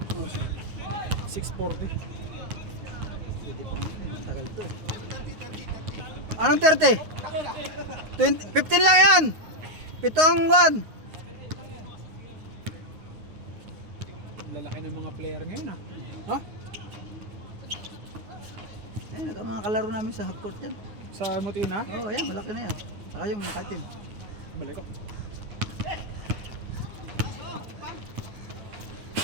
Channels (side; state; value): left; late; 9.6 ms